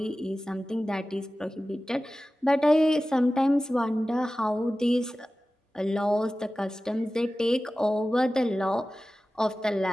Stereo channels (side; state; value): both; normal; correlation 0.96